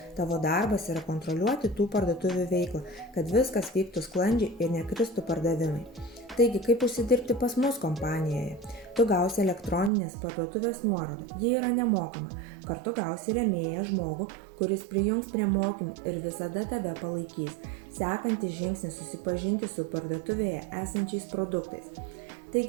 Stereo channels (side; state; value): left; drops out; at 9.9 s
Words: Tavo darbas yra kontroliuoti tų parduotuvių veiklą, kad viskas vyktų sklandžiai ir nekristų pardavimai. Taigi, kaip užsidirbti pas mus kompanijoje? Tu gausi elektroninės parduotuvės nuorodą, ji yra nemokama. Kartu gausi rėmėją žmogų, kuris prijungs prie mokymų ir visada tave palaikys. Sekantis žingsnis susipažinti su parduotuvėje esančiais produktais.